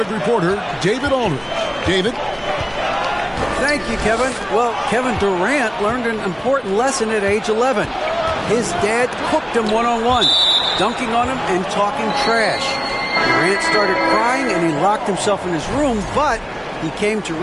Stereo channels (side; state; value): both; identical; correlation 1.00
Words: reporter, David Aldridge. David? Thank you, Kevin. Well, Kevin Durant learned an important lesson at age 11. His dad cooked him one-on-one, dunking on him and talking trash. Durant started crying and he locked himself in his room, but he came to